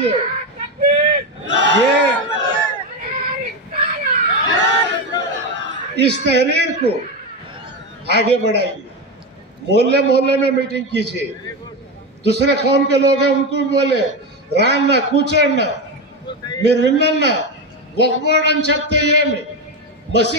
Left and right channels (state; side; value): normal; both; correlation 0.14